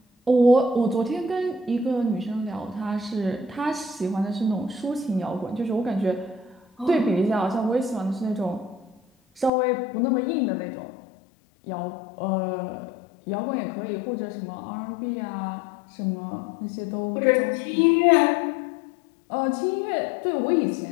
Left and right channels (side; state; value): right; drops out; at 9.5 s